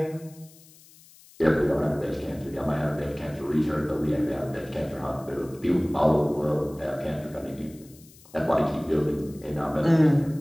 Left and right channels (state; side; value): noise; left; hiss, 24 dB below the sound